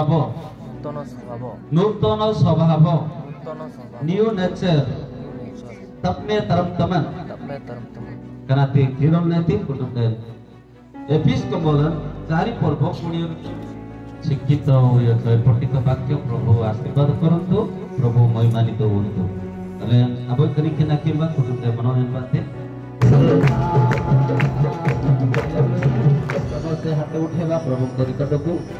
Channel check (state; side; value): identical; both; correlation 1.00